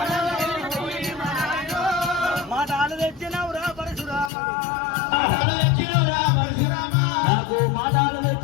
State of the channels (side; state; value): right; drops out; at 4.3 s